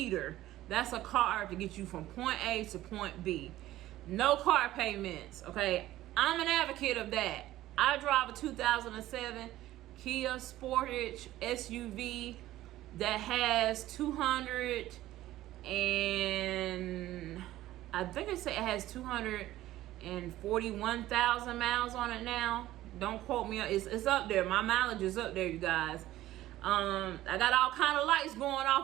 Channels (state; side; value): quieter; left; 15.0 dB